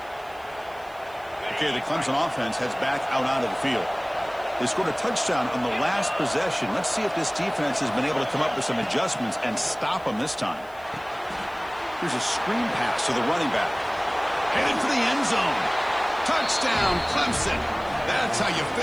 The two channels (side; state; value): right; noise; hiss, 27 dB below the sound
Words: Okay, the Clemson offense heads back out onto the field. They scored a touchdown on the last possession. Let's see if this defense has been able to come up with some adjustments and stop them this time. Here's a screen pass to the running back. Headed for the end zone. Touchdown, Clemson. That's how you